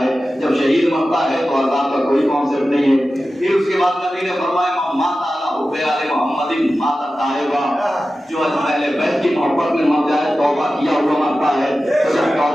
ہے، جب شہید مرتا ہے تو عذاب کا کوئی کانسیپٹ نہیں ہے۔ پھر اس کے بعد نبی نے فرمایا مات اعلیٰ حب حب آل محمد مات الطائبہ، جو اہل بیت کی محبت میں مر جائے توبہ کیا ہوا مرتا ہے، تو جب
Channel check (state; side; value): normal; both; correlation 0.94